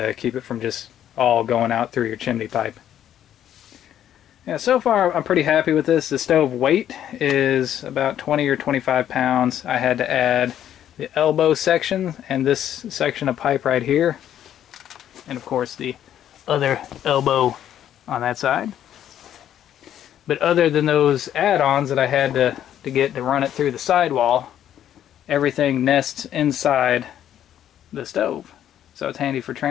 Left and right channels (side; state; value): right; quieter; 10.7 dB